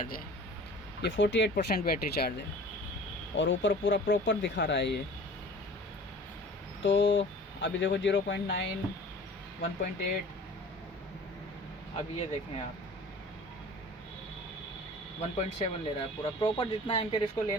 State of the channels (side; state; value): both; normal; correlation 0.44